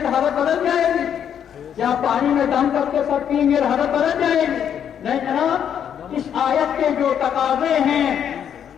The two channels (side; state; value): right; quieter; 8.8 dB